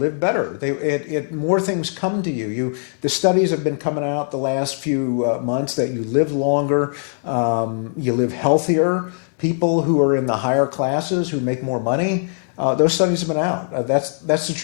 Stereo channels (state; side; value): silent; right; digital silence